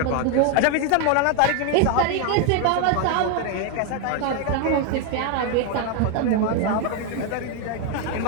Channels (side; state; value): both; different; correlation 0.01